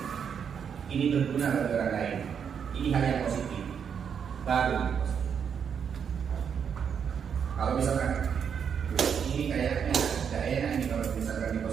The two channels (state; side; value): quieter; left; 7.4 dB